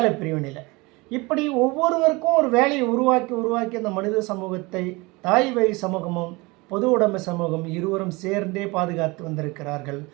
பிரிவினையில். இப்படி ஒவ்வொருவருக்கும் ஒரு வேலையை உருவாக்கி அந்த மனித சமூகத்தை தாய் வழி சமூகமும் பொது உடைமை சமூகம் இருவரும் சேர்ந்தே பாதுகாத்து வந்திருக்கிறார்கள்.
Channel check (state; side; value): quieter; left; 24.5 dB